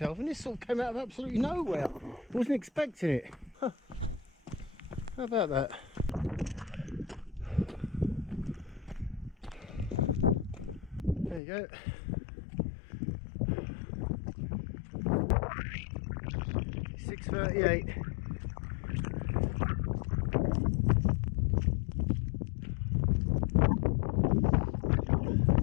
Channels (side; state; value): right; drops out; at 11.4 s